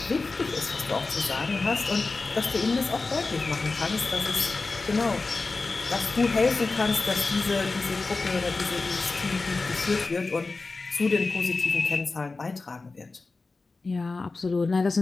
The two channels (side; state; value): right; quieter; 3.7 dB